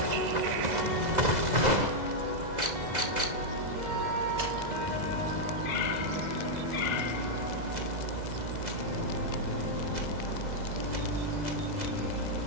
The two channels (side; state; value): left; late; 2.0 ms